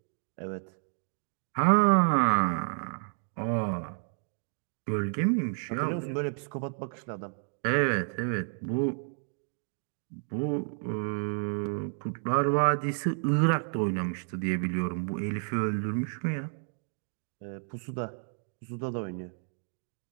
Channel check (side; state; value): left; silent; 57 dB below the other